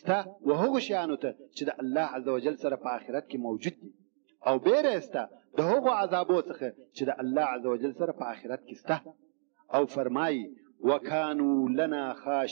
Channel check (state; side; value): silent; left; digital silence